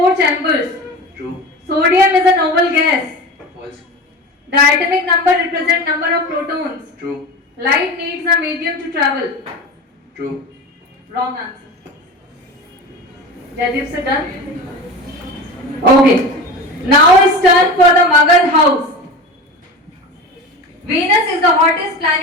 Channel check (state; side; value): normal; both; correlation 0.30